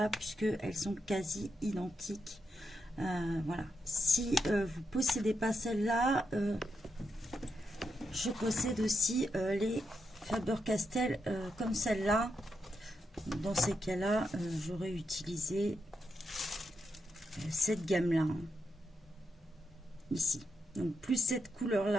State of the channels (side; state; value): both; normal; correlation 0.84